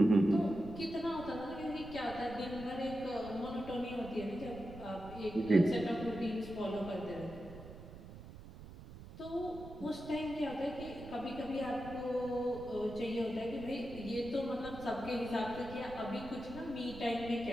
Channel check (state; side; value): noise; right; rumble, 14 dB below the sound